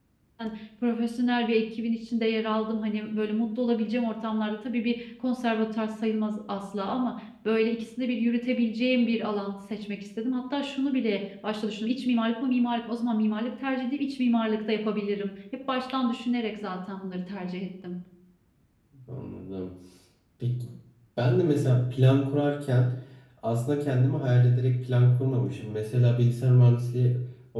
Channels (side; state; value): both; identical; correlation 1.00